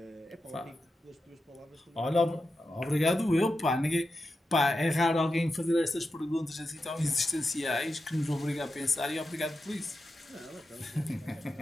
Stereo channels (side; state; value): both; normal; correlation 0.89